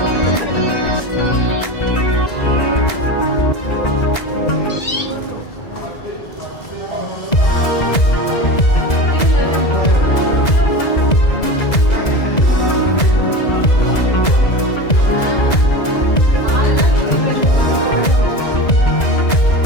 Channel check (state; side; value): late; right; 2.0 ms